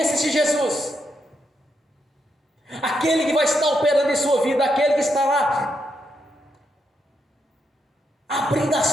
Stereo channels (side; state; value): both; normal; correlation 0.81